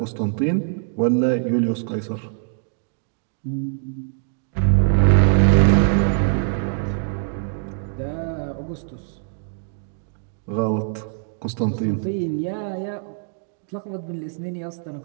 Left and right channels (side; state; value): left; silent; 63 dB below the other